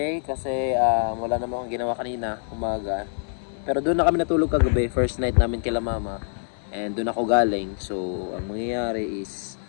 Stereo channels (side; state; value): right; silent; 62 dB below the other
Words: kasi wala naman akong ginawa kanina umaga. Pero doon na kami natulog kagabi, first night namin kila mama and doon ako galing. So ang mangyayari is